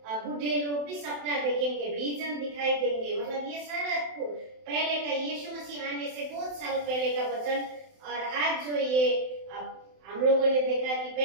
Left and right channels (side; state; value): left; late; 27 ms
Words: बूढ़े लोग भी सपना देखेंगे, विजन दिखाई देंगे। मतलब ये सारा पहले का यीशु मसीह आने से बहुत साल पहले का वचन। और आज जो ये हम लोगों ने देखा कि